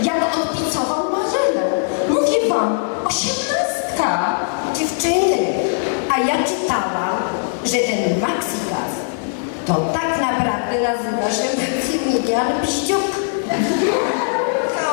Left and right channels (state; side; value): silent; right; digital silence